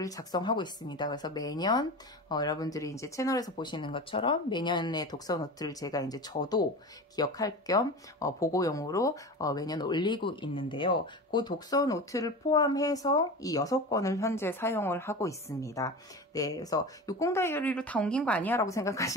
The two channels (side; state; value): both; normal; correlation 0.30